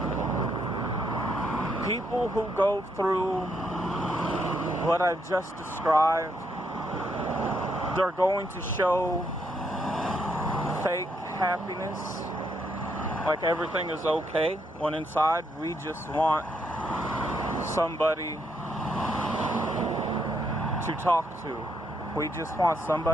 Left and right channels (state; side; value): normal; both; correlation 0.76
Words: People who go through what I've just described, they're going to show fake happiness, like everything is okay, when inside we just want somebody to talk to. We just want